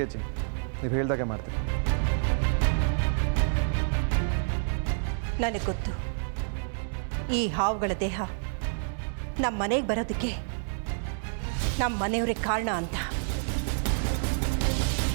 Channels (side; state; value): left; silent; digital silence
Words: ಅಜ್ಜಿ, ನೀವು ಹೇಳ್ದಾಗೆ ಮಾಡ್ತೀನಿ. ನನಗೆ ಗೊತ್ತು, ಈ ಹಾವುಗಳ ದೇಹ ನಮ್ಮ ಮನೆಗೆ ಬರೋದಕ್ಕೆ ನಮ್ಮ ಮನೆಯವರೇ ಕಾರಣ ಅಂತ.